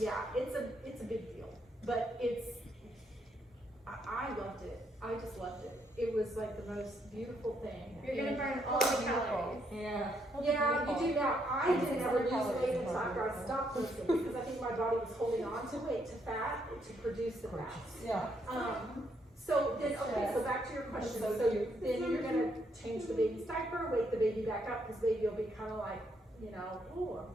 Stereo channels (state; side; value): normal; both; correlation 0.74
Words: it's a big deal, but I loved it. I just loved it. It was like the most beautiful thing. You're gonna burn all the calories. Yeah. Yeah, you do now. I didn't ever lose weight until after I stopped lifting because I think my body was holding on to weight, to fat, to produce the fat. Yeah. So then, okay, so back to your question. So then you're gonna change the baby's diaper, wake the baby back up, because baby will be kind of like, you know, oh, I'm